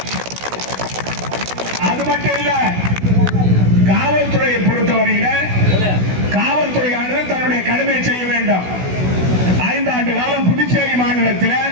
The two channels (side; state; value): left; late; 16 ms